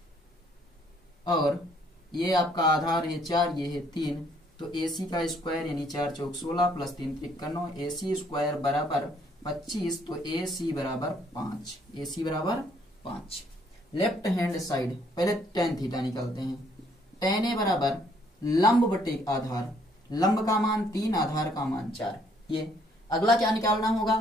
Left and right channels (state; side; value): normal; both; correlation 0.66